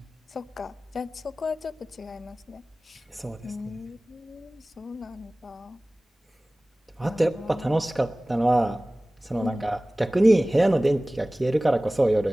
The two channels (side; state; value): both; normal; correlation 0.98